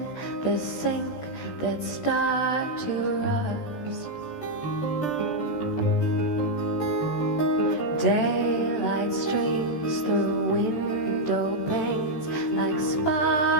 the sink that start to rust. Daylight streams through window panes like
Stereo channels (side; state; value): right; late; 13 ms